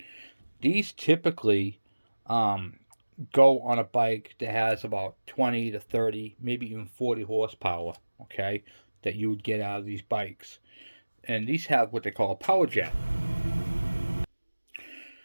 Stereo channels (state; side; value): inverted; both; correlation -1.00